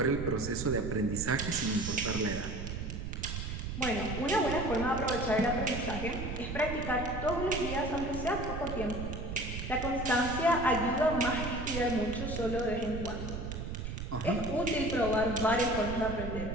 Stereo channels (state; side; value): noise; right; rumble, 6 dB below the sound